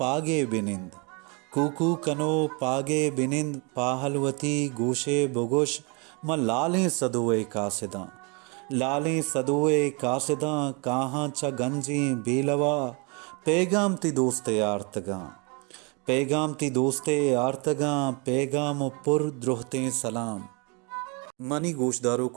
बिनिंद, कूकू कनो पागे बिनिंद, पाहलवती गोशे बोगोश, म लालें सदुए कासिदा, लालें सदुए कासिदा, कहाँ च गंजी बेलवा, पैगाम ती दोस्ते आर्तगा, पैगाम ती दोस्ते आर्तगा, पैगाम पुर द्रोहते सलाम। मनी गोशदारों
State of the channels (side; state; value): left; quieter; 32.0 dB